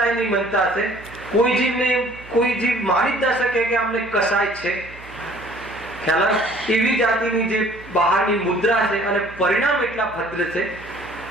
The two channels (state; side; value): noise; right; hum, 20 dB below the sound